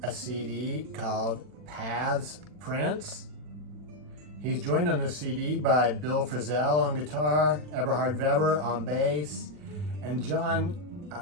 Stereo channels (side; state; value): left; late; 40 ms